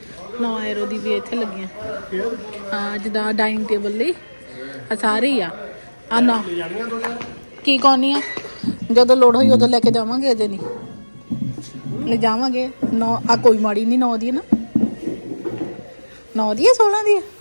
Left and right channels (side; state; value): both; inverted; correlation -1.00